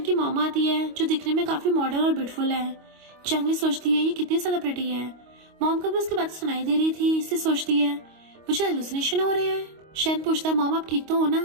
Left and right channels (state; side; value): late; left; 25 ms